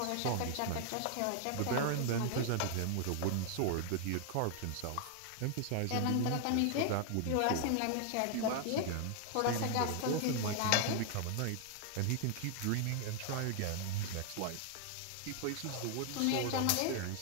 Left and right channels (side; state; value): both; different; correlation 0.00